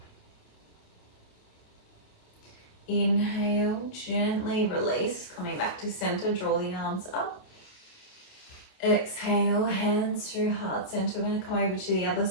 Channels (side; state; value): right; late; 28 ms